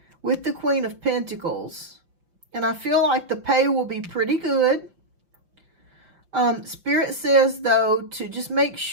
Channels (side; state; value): left; late; 5.7 ms